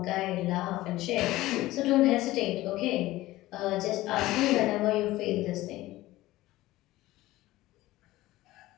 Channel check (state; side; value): quieter; right; 17.2 dB